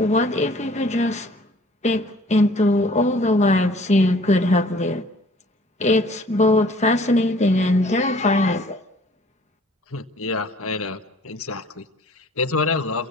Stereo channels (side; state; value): both; normal; correlation 0.54